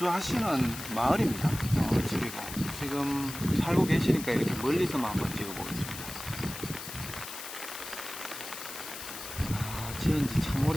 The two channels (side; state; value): left; noise; hiss, 10 dB below the sound